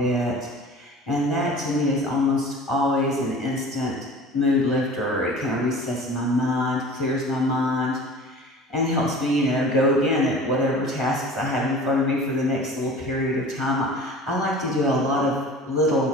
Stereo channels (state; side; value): normal; both; correlation 0.41